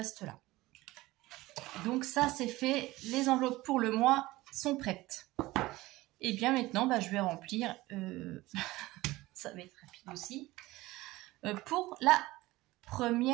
là. Donc ça c'est fait, les enveloppes pour le mois sont prêtes. Et bien maintenant je vais remplir, ça va être rapide aussi, pour la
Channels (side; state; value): left; quieter; 18.9 dB